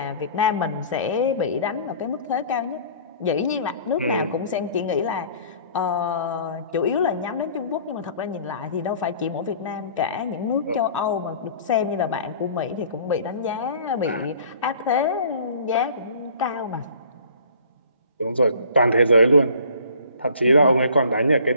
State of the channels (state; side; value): inverted; both; correlation -0.49